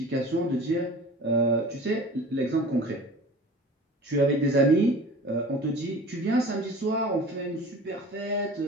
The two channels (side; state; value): both; normal; correlation 0.41